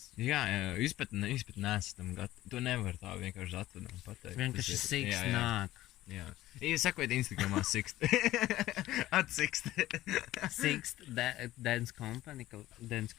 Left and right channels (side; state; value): right; quieter; 15.6 dB